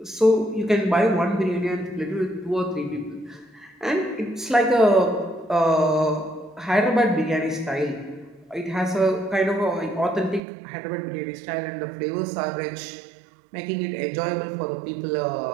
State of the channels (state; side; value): drops out; left; at 10.4 s